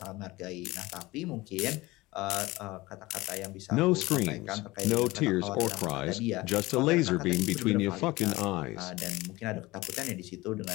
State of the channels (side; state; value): right; quieter; 20.3 dB